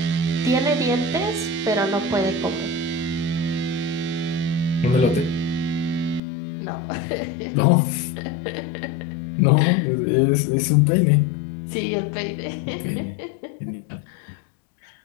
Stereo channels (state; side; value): drops out; right; at 6.2 s